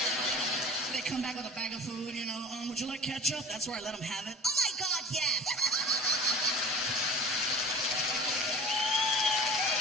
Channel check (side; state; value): both; normal; correlation 0.41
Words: They come back with a bag of food, you know. Would you like ketchup? That's where I let them have it. Oh my God, yes.